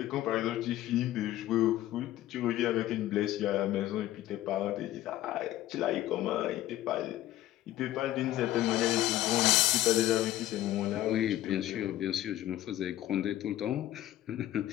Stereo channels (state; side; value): quieter; right; 14.3 dB